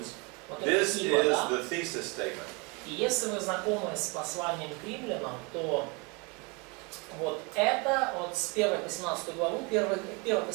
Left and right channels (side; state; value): left; quieter; 29.8 dB